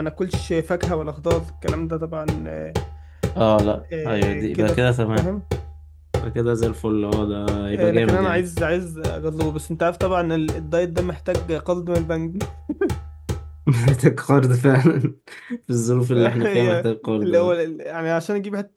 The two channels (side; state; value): both; identical; correlation 1.00